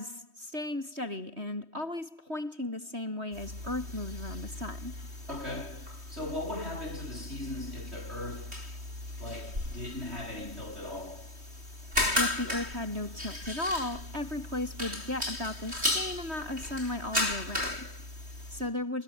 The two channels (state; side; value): late; left; 3.1 ms